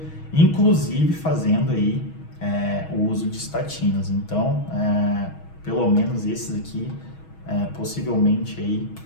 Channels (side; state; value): right; late; 6.3 ms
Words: inclusive fazendo aí o uso de estatinas. Então, pelo menos esses aqui, possivelmente aí